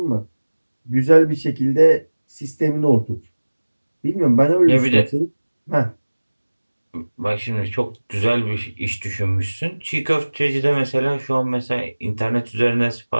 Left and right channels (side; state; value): both; inverted; correlation -1.00